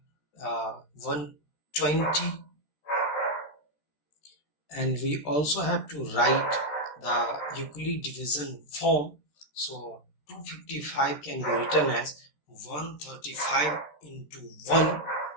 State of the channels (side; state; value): right; late; 13 ms